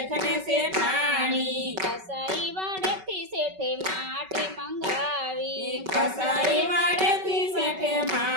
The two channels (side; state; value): left; late; 5.3 ms